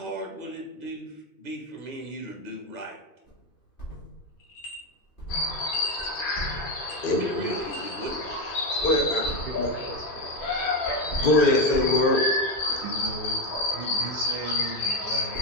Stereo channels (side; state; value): right; late; 2.5 ms